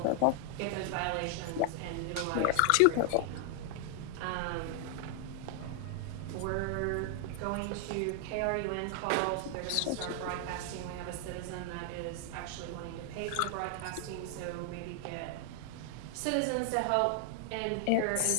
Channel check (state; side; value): different; both; correlation 0.00